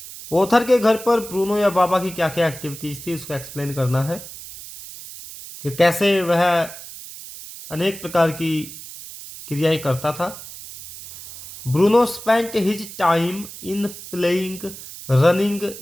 Author के घर पर ब्रूनो या बाबा की क्या क्या एक्टिविटीज थी, उसको एक्सप्लेन करना है कि कैसे वह अनेक प्रकार की क्रियाएं करता था। Bruno spent his time in playing, running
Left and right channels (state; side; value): noise; right; hiss, 14 dB below the sound